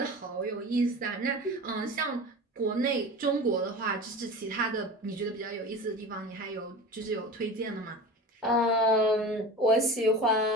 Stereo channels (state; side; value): normal; both; correlation 0.33